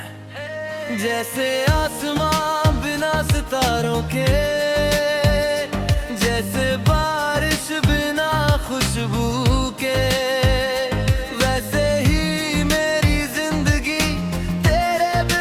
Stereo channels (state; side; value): identical; both; correlation 1.00